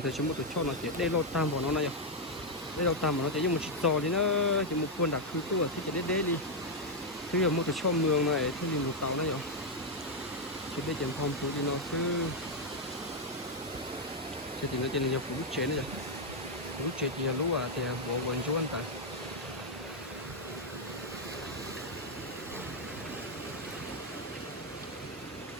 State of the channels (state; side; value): normal; both; correlation 0.01